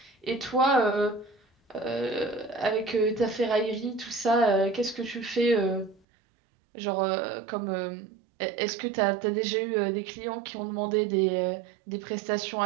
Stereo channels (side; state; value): left; drops out; at 6.0 s